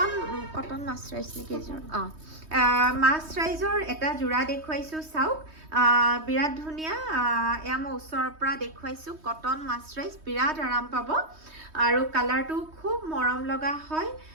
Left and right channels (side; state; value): left; late; 3.2 ms